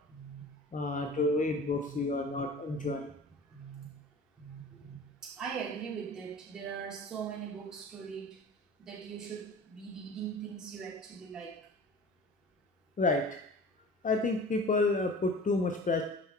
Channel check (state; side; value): normal; both; correlation 0.41